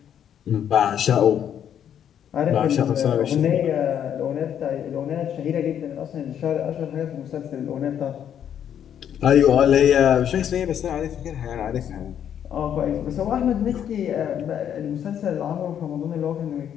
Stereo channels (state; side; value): quieter; right; 9.3 dB